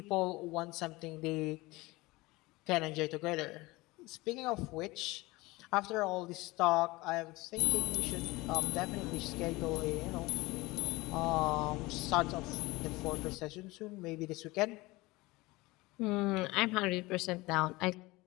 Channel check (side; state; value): right; quieter; 21.6 dB